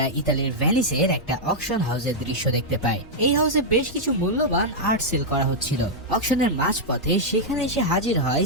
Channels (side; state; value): both; normal; correlation -0.05